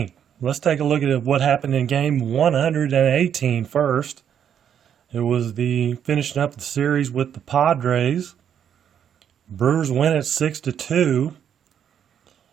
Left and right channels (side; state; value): left; quieter; 8.8 dB